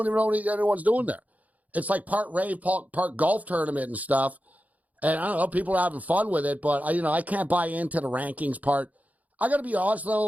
even know what anyone's doing there. It's like part rave, part golf tournament and stuff. And I don't know, people are having fun with it, but I can't buy into the rankings part. I got to be honest,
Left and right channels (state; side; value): late; left; 0.076 ms